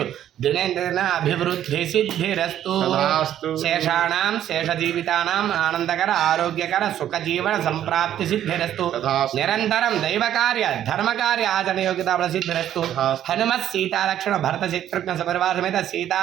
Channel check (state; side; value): quieter; left; 11.1 dB